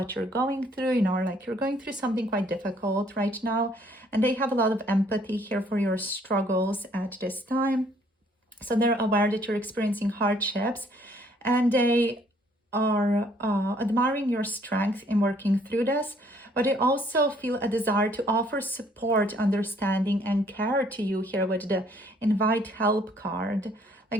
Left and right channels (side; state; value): both; normal; correlation 0.63